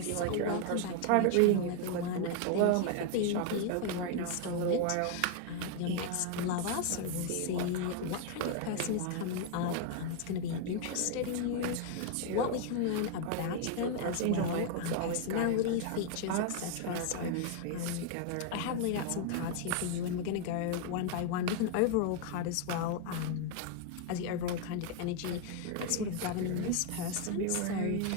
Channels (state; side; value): different; both; correlation 0.00